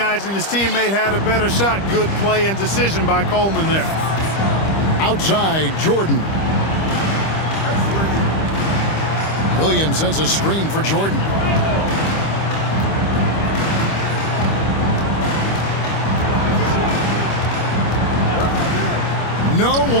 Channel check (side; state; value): right; late; 25 ms